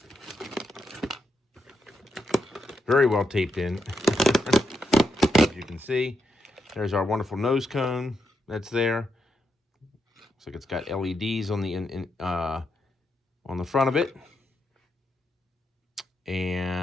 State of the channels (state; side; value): normal; both; correlation 0.83